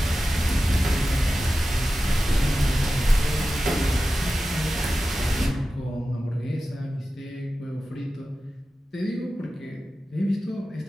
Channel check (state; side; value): normal; both; correlation 0.94